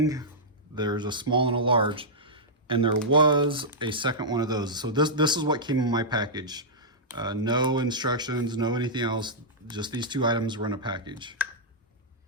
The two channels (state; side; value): normal; both; correlation -0.11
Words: there's a small and a large, and there was a second one of those. So this is what came in my package. No instructions, no anything else, just these two items were in a package.